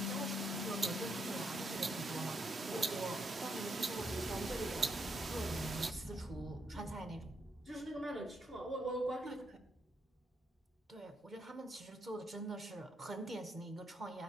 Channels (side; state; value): both; normal; correlation 0.79